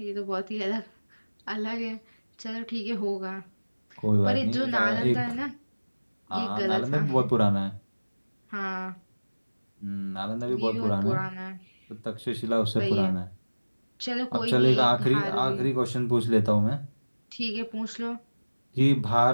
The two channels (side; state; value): both; inverted; correlation -1.00